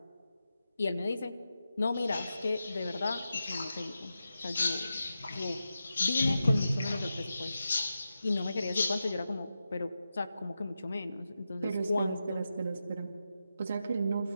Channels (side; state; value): both; inverted; correlation -0.90